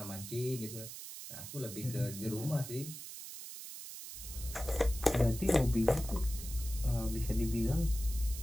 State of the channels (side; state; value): right; noise; hiss, 10 dB below the sound